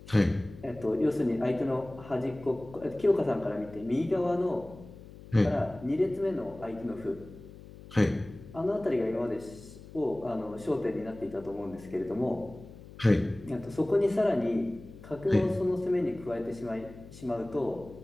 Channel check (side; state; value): left; noise; hum, 17 dB below the sound